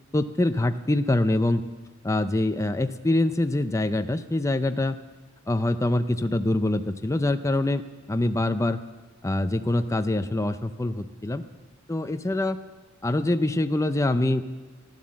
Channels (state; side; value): normal; both; correlation 0.88